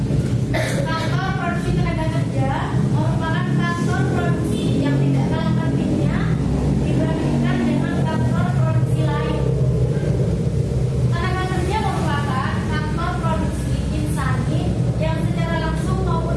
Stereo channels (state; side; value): identical; both; correlation 1.00